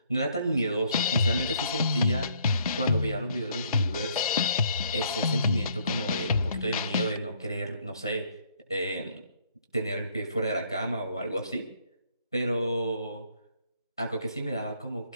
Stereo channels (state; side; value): inverted; both; correlation -0.67